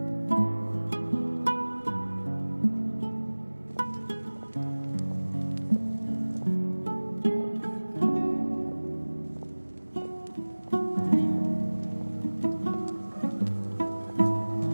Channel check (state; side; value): inverted; both; correlation -1.00